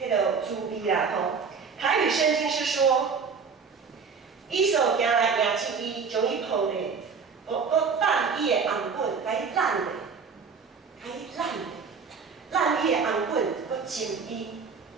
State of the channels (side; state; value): left; quieter; 5.5 dB